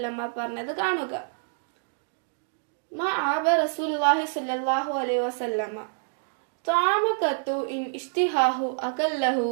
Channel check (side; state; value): left; silent; digital silence